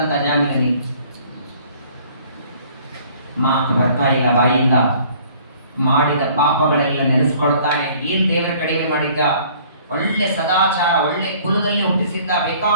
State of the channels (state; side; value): inverted; both; correlation -0.55